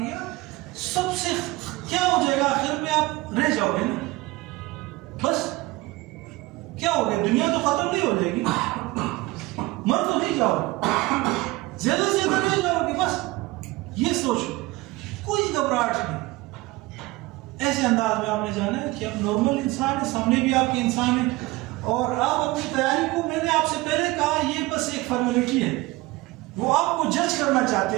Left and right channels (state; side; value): quieter; left; 20.6 dB